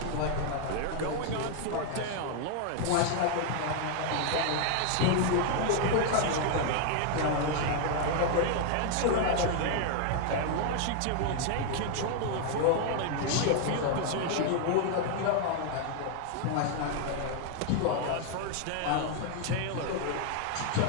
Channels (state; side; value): different; both; correlation 0.00